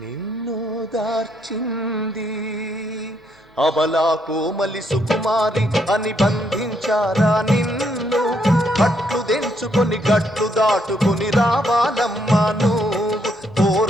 నిన్ను దార్చింది. అబలా కోమలి సుకుమారి అని బంధించారా నిన్ను? కట్లు దెంచుకొని గట్లు దాటుకొని రావాలమ్మా నువ్వు,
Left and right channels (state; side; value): normal; both; correlation 0.74